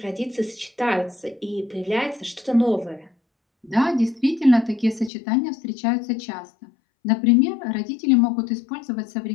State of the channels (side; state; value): right; drops out; at 5.1 s